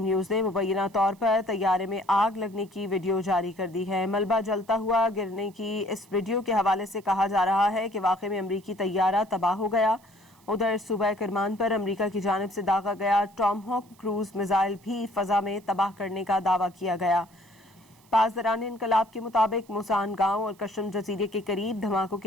نیوز نے مبینہ طور پر طیارے میں آگ لگنے کی ویڈیو جاری کر دی ہے۔ ملبہ جلتا ہوا گرنے کی اس ویڈیو کے حوالے سے کہا جا رہا ہے کہ واقعے میں امریکی طیارہ تباہ ہو گیا۔ ادھر صوبہ کرمان پر امریکہ کی جانب سے داغا گیا ٹام ہاک کروز میزائل بھی فضا میں تباہ کرنے کا دعویٰ کیا گیا۔ پاسداران انقلاب کے مطابق موسان گاؤں اور قشم جزیرے کے قریب دھماکوں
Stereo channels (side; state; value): right; noise; hiss, 30 dB below the sound